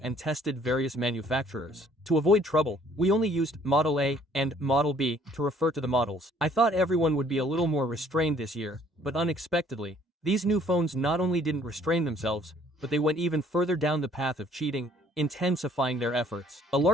and tested various manufacturers. To avoid trouble, we only used Model A and Model B to refer to the models. I thought everyone would be a little more restrained this year, but unexpectedly, these new phones not only didn't restrain themselves, but they went even further down the path of cheating, intensifying their efforts. A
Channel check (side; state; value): both; normal; correlation 0.60